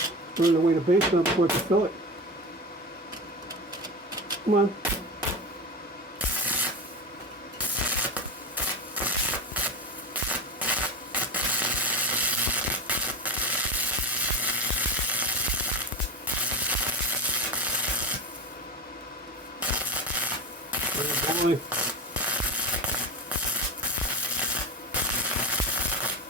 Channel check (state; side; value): normal; both; correlation 0.23